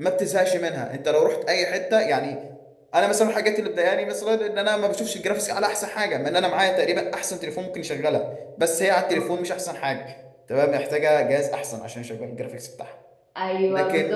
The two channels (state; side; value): identical; both; correlation 1.00